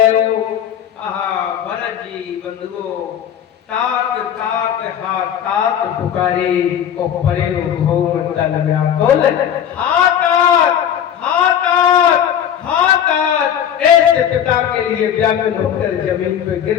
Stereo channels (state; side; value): quieter; right; 9.4 dB